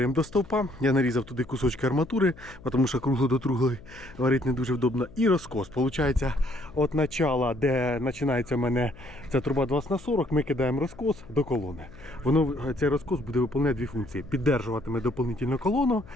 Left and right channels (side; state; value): left; noise; hum, 20 dB below the sound